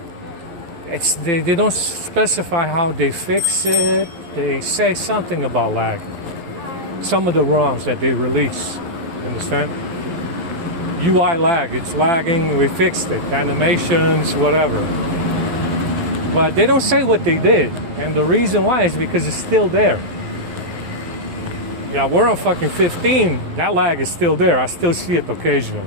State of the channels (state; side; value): late; left; 11 ms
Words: they don't specify how they fix it. They say something about lag. Some of the ROMs that they release, understand? UI lag, it's lagging, we fixed it. Animations, whatever. But they don't say what they did. And the reason why is because it's still there. Yeah, we're on fucking 15. That lag is still there. I still see it